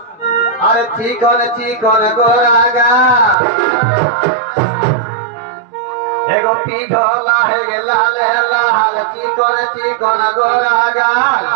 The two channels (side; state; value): left; drops out; at 3.4 s